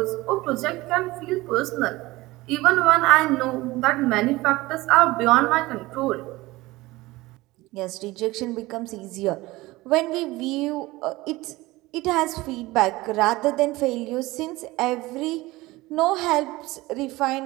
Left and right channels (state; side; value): quieter; left; 19.8 dB